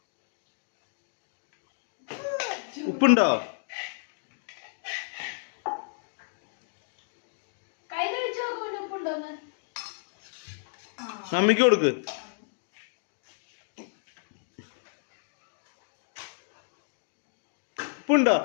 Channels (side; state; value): right; silent; digital silence